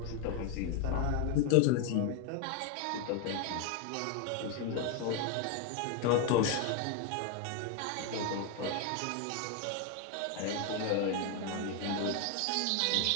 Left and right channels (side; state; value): both; different; correlation 0.01